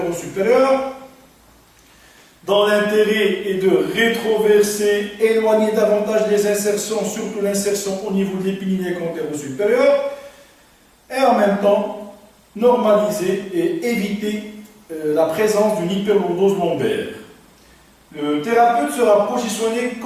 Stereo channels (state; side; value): identical; both; correlation 1.00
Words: dans l'intérêt est de rétroverser, éloigner davantage les insertions, surtout l'insertion au niveau de l'épiniliaque antéro-supérieur, et en même temps normaliser et éviter la présence d'une hyperlordose lombaire. Le thérapeute sera positionné